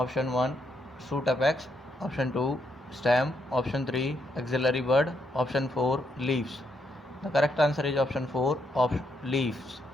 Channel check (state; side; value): normal; both; correlation 0.78